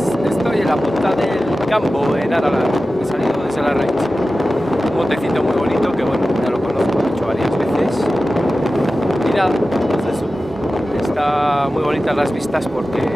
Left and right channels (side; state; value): both; normal; correlation 0.94